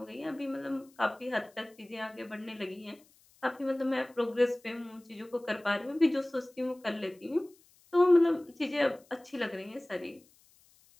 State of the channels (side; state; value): left; noise; hiss, 30 dB below the sound